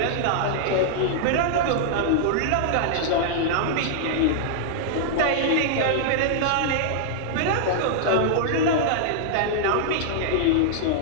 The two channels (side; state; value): both; different; correlation -0.01